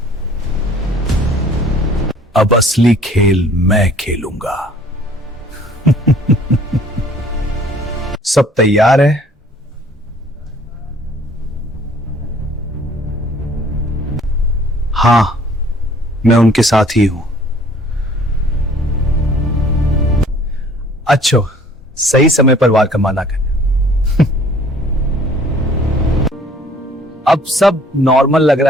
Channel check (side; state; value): both; normal; correlation 0.55